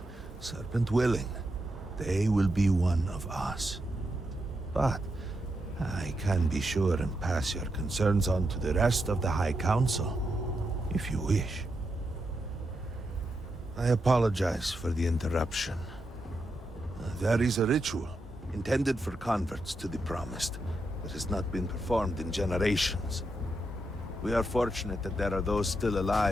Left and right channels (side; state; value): both; normal; correlation 0.84